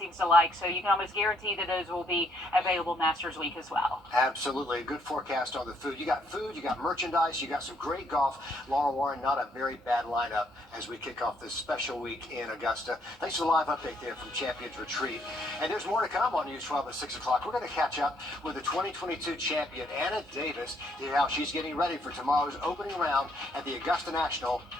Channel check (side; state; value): both; normal; correlation 0.70